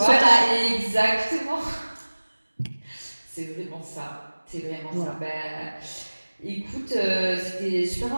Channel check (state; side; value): inverted; both; correlation -1.00